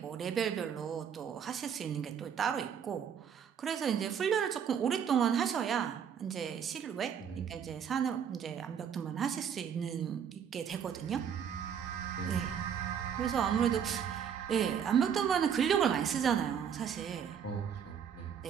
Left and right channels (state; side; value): quieter; left; 7.9 dB